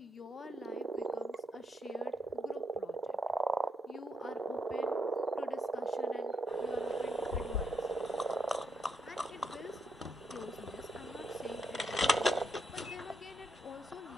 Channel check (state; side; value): normal; both; correlation 0.78